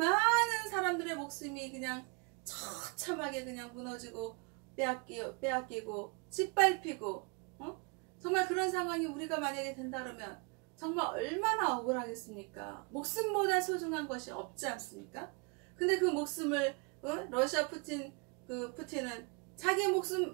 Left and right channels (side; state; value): left; quieter; 32.5 dB